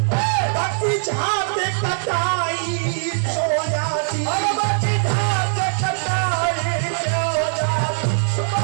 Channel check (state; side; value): silent; left; 59 dB below the other